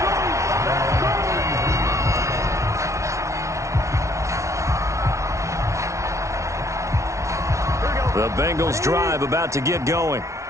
The Bengals drive about to get going.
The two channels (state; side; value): late; left; 0.14 ms